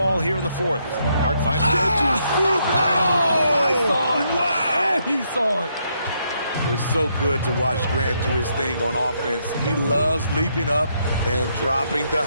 here in the fourth. Hart finds it. I saw it. Wow! And he saw it. It's so good to watch Grant do his thing on offense. He loves leaping up and dropping the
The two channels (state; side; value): inverted; both; correlation -0.75